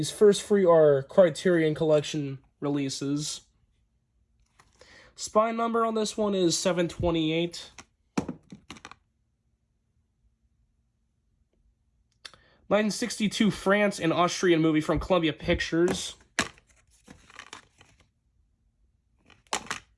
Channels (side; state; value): both; identical; correlation 1.00